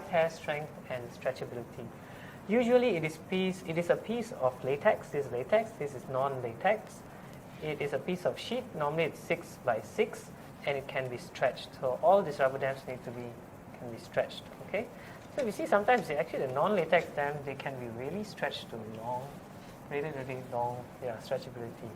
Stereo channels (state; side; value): identical; both; correlation 1.00